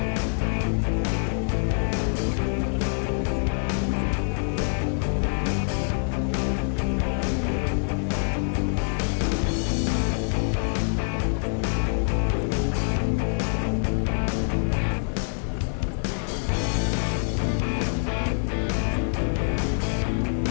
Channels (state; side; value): silent; right; digital silence